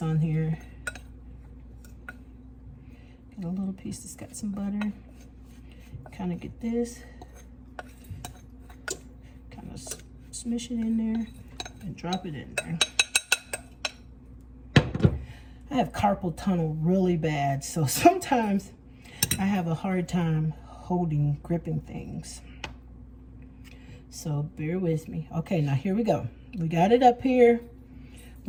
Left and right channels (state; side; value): identical; both; correlation 1.00